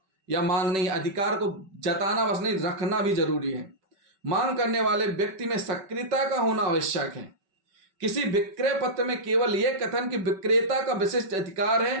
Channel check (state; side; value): late; left; 5.3 ms